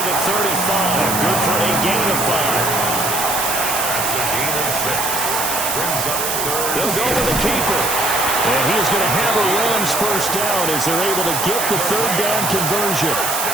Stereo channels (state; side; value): noise; right; hiss, 1 dB below the sound